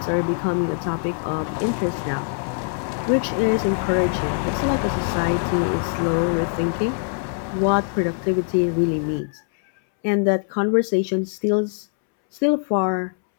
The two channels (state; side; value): silent; right; 64 dB below the other